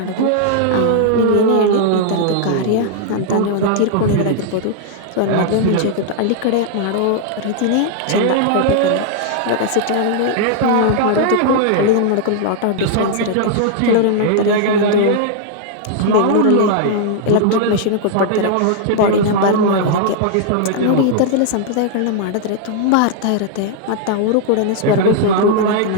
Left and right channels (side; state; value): both; different; correlation -0.01